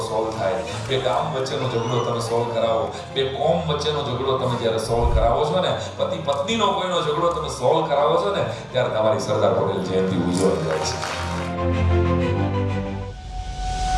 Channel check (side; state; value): both; identical; correlation 1.00